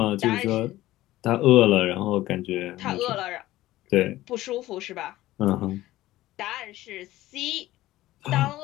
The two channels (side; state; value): right; quieter; 16.0 dB